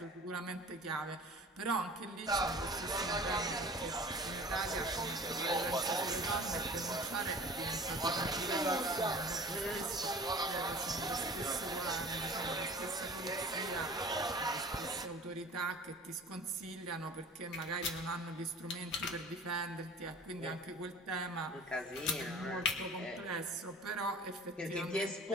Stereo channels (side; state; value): both; normal; correlation 0.42